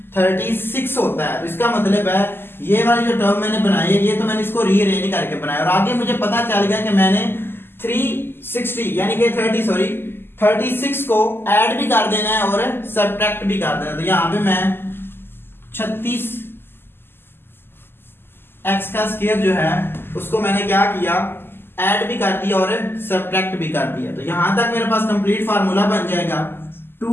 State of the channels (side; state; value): right; late; 0.11 ms